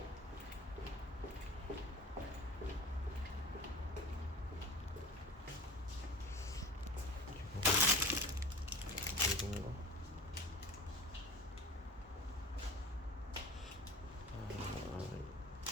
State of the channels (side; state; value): both; normal; correlation 0.35